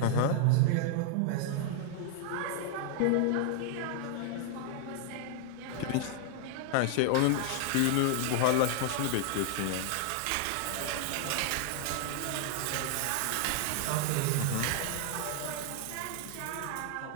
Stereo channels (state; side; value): different; both; correlation 0.00